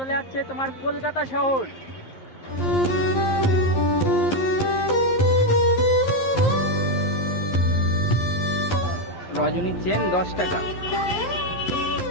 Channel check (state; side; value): late; right; 11 ms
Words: যাচ্ছে তোমার কলকাতা শহর। রজনী চেন 10 টাকা।